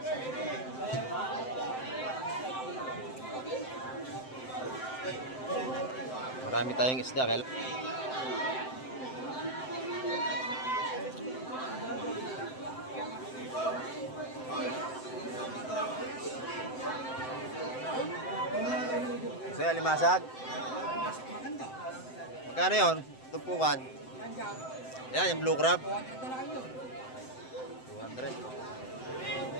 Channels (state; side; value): late; right; 7.7 ms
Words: Marami tayong isda. Kaya... So, yung alimasag. Magkano yun? Tumpukan. Yan, yung blue crab. 200.